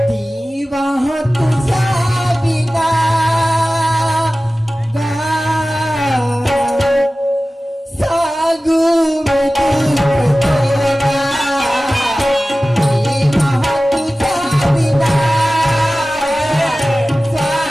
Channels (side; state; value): both; normal; correlation 0.96